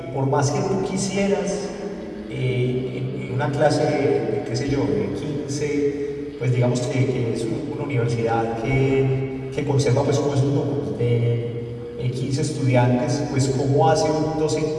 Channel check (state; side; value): identical; both; correlation 1.00